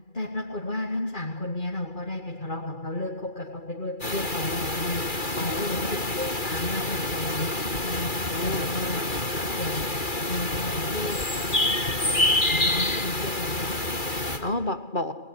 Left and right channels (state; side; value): late; right; 2.3 ms